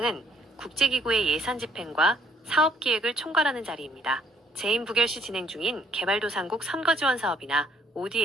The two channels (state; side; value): normal; both; correlation 0.65